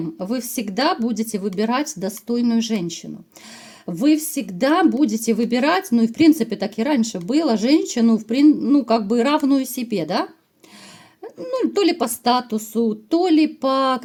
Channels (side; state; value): both; identical; correlation 1.00